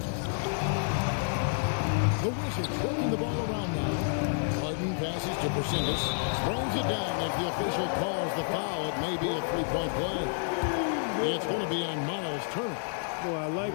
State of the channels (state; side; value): silent; right; 58 dB below the other